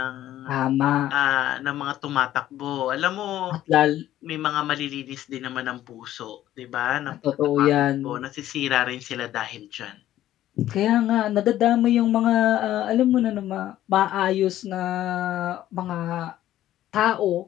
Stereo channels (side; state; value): right; quieter; 13.2 dB